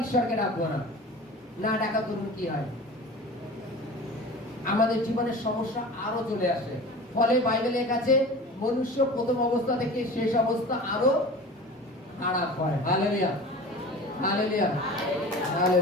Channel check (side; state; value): both; normal; correlation 0.36